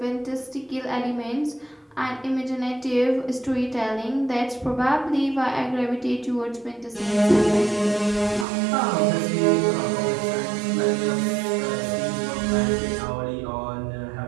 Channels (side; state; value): left; drops out; at 8.5 s